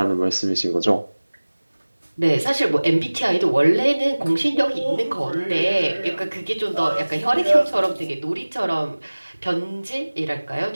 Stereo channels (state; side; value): inverted; both; correlation -1.00